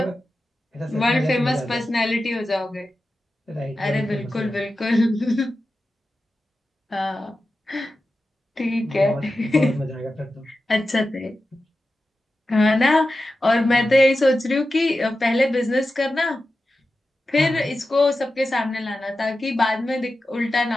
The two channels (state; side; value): normal; both; correlation 0.92